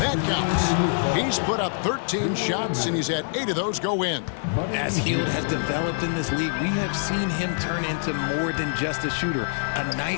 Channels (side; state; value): right; silent; digital silence